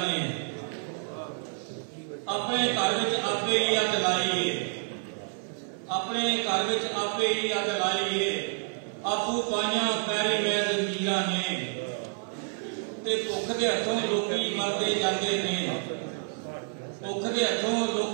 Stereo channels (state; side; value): silent; left; 59 dB below the other